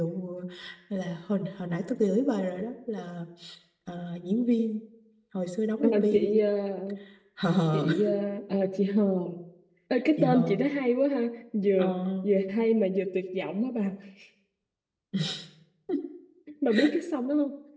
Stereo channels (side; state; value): both; identical; correlation 1.00